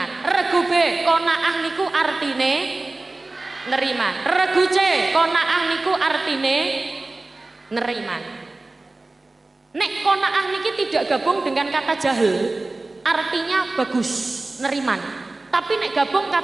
Regu B, qanaah niku artine neriman. Regu C, qanaah niku artine neriman. Nek qanaah niki tidak gabung dengan kata jahil, artinya bagus, neriman. Tapi nek gabung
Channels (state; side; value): quieter; left; 3.1 dB